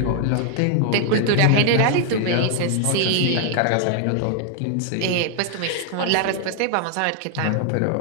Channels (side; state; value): both; different; correlation 0.00